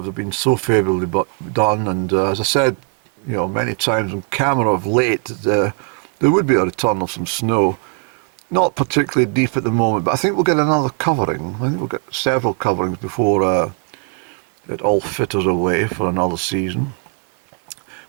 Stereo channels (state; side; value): quieter; left; 37.5 dB